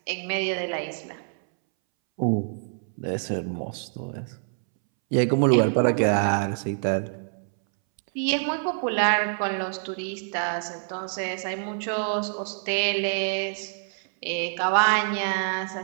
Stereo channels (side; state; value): left; silent; 61 dB below the other